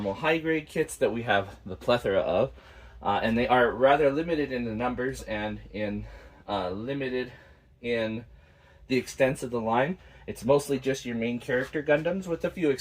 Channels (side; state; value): both; identical; correlation 1.00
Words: high grade kits that we have the plethora of. And they are rather limited in the numbers and limited in the extents of the line. It's mostly just your main character Gundams with a few